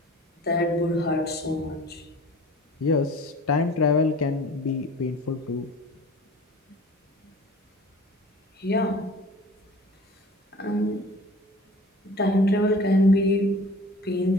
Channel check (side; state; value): both; normal; correlation 0.44